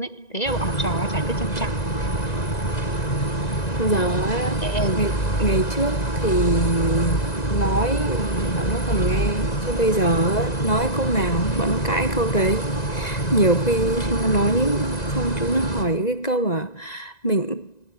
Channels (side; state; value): right; late; 1.9 ms